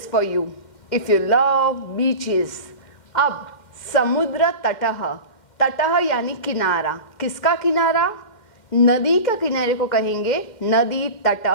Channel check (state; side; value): late; right; 2.1 ms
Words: for you if you love beaches. अब समुद्र तटः, तटः यानी किनारा। किसका किनारा? नदी का किनारे को कहेंगे नदी